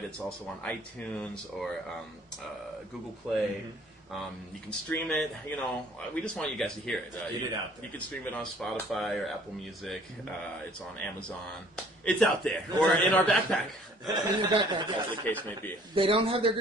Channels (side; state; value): both; normal; correlation 0.56